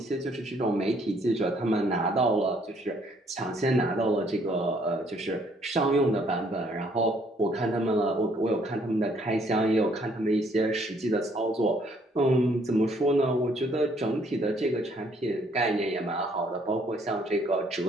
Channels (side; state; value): both; normal; correlation 0.65